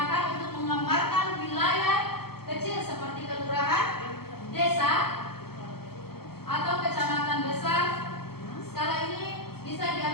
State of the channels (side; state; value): right; late; 0.95 ms